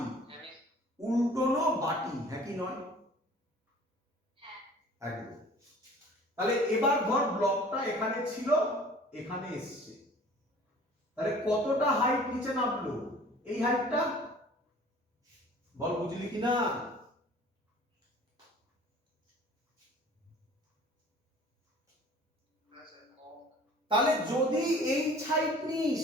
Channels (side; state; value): both; normal; correlation 0.48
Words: উল্টোনো বাটি, হ্যাঁ কি নয়? একদম। তাহলে এবার ধর ব্লকটা এখানে ছিল, এখানে এসছে, তাহলে কতটা হাইট নিচে নামলো? এই হাইটটা, বল বুঝলি কিনা? তাহলে যদি এই হাইট নিস,